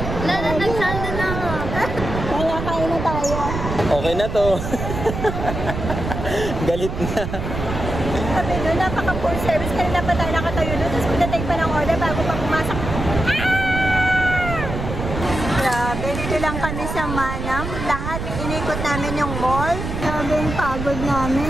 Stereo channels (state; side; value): noise; right; rumble, 5 dB below the sound